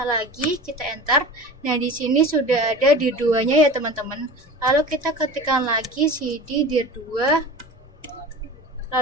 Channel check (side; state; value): both; normal; correlation 0.35